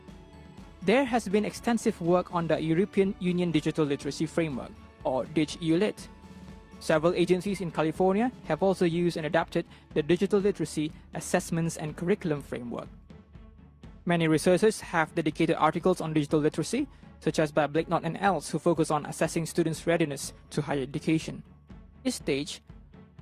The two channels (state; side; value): identical; both; correlation 1.00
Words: There has been extensive work on the European Union Digital Literacy Framework, or DigEULit. Several agencies in California have also used and adapted the Digital Literacy Assessments and Curriculum Framework. Many researchers have dedicated articles on digital literacy, such as by Blakenot and else, who focus on assessing students' readiness to higher education. At this stage,